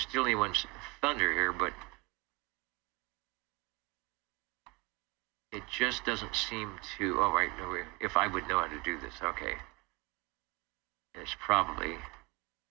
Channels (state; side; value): quieter; left; 25.4 dB